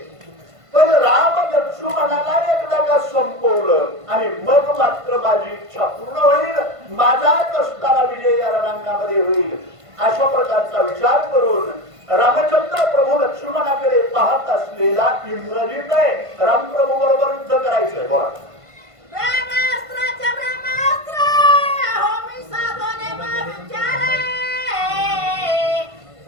पण राम लक्ष्मणाला एकदा का संपवलं आणि मग मात्र माझी इच्छा पूर्ण होईल माझाच असताना विजय या रणांगणामध्ये होईल अशा प्रकारचा विचार करून रामचंद्र प्रभू लक्ष्मणाकडे पाहत असलेला इंद्रजित आहे. रामप्रभू बरोबर युद्ध करायचंय. बोला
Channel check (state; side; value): late; left; 1.5 ms